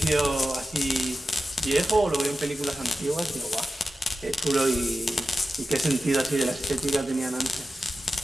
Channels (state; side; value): normal; both; correlation 0.93